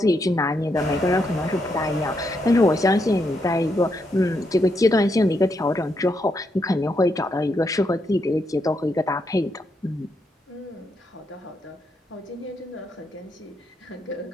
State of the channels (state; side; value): normal; both; correlation 0.79